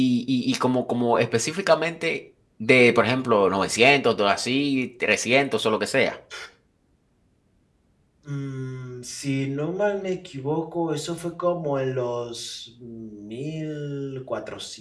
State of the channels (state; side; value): identical; both; correlation 1.00